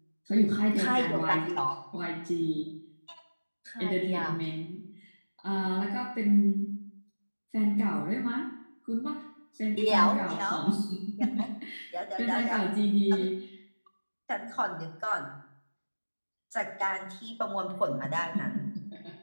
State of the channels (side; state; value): both; inverted; correlation -1.00